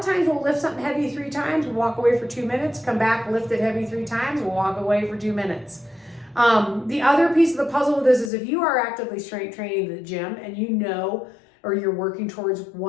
times we'll lift something heavy 3 times, we'll walk away for 2 minutes, come back, lift it heavy 3 times, we'll walk away for 2 minutes. The other piece of the puzzle with this is if you are actively strength training in the gym and you know, or you're working towards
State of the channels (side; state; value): right; drops out; at 8.3 s